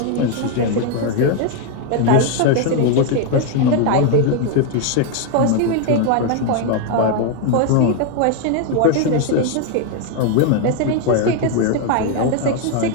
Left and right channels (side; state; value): both; different; correlation 0.01